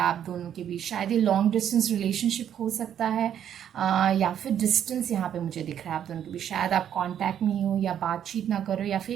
आप दोनों के बीच, शायद ये लॉन्ग डिस्टेंस रिलेशनशिप हो सकता है, या फिर डिस्टेंस यहाँ पे मुझे दिख रहा है आप दोनों के बीच। शायद आप कांटेक्ट में हो या बातचीत ना करो, या फिर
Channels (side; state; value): left; quieter; 9.7 dB